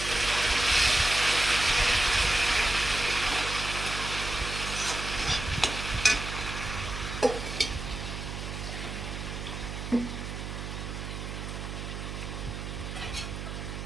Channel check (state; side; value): noise; right; hum, 6 dB below the sound